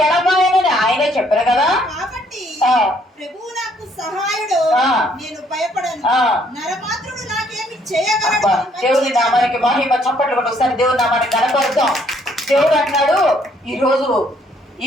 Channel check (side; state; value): both; normal; correlation 0.66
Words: ఎడబాయనని ఆయనే చెప్పారు కదా. ప్రభువు నాకు సహాయుడు, నేను భయపడను, నరమాత్రుడు నాకేమి చేయగలడు. దేవుని నామానికి మహిమ. చప్పట్లు కొట్టి ఒకసారి దేవుని నామానికి కనపడతాం. దేవుడు అన్నాడు, ఈరోజు